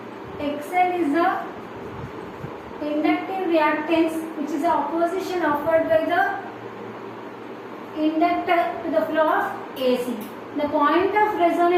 XL is the inductive reactance, which is the opposition offered by the inductor to the flow of AC. The point of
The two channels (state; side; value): identical; both; correlation 1.00